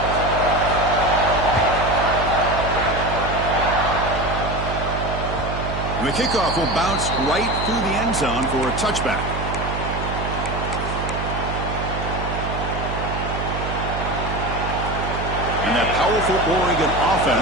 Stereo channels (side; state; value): right; noise; hum, 4 dB below the sound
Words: And the kickoff will bounce right through the end zone for a touchback. And that powerful Oregon